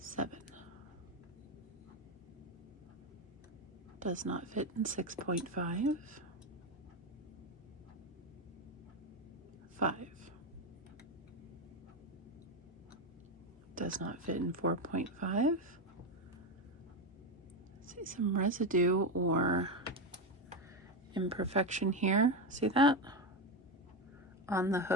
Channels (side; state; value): both; normal; correlation 0.12